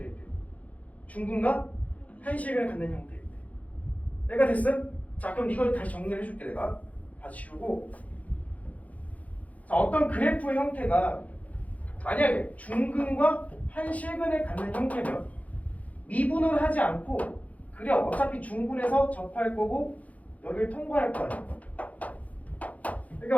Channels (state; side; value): late; right; 0.071 ms